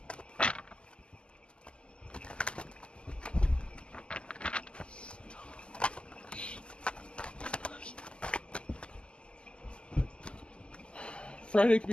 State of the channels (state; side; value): late; right; 0.057 ms